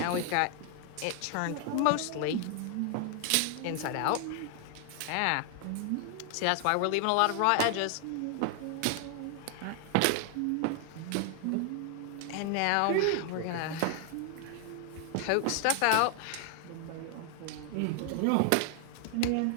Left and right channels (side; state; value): both; different; correlation 0.00